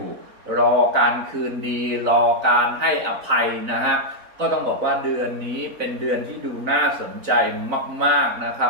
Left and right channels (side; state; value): left; late; 3.9 ms